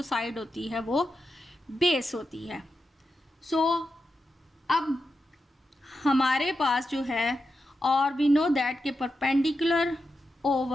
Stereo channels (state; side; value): normal; both; correlation 0.88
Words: साइड होती है वो बेस होती है। सो अब हमारे पास जो है, और वी नो दैट के perpendicular